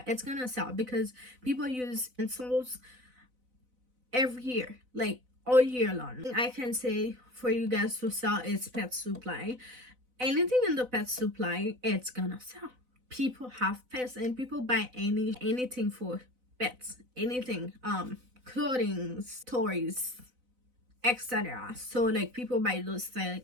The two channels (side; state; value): left; late; 4.0 ms